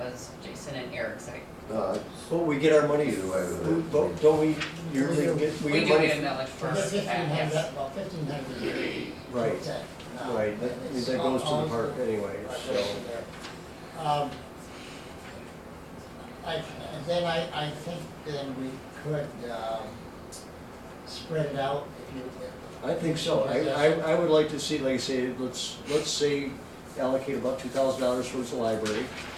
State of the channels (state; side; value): identical; both; correlation 1.00